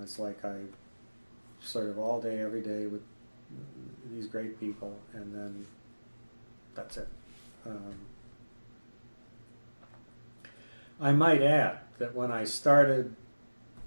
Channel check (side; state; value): both; inverted; correlation -1.00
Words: it's like I sort of all day, every day with these great people, and then that's it. I might add that when I started